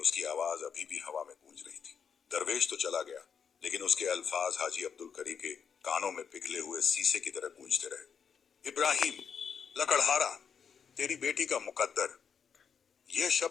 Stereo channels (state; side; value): quieter; right; 6.8 dB